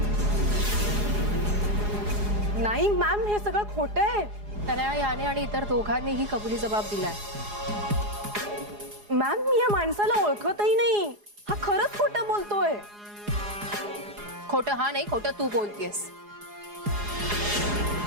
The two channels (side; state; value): left; late; 4.8 ms